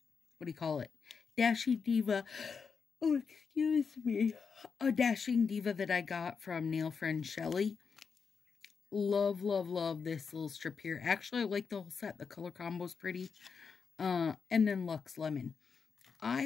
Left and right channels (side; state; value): right; quieter; 5.7 dB